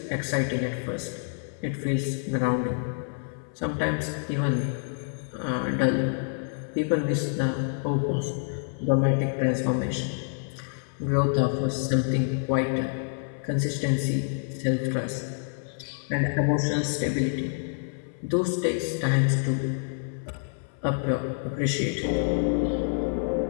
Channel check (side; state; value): right; silent; 57 dB below the other